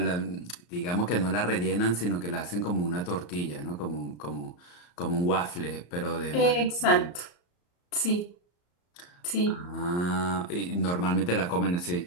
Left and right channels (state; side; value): late; right; 34 ms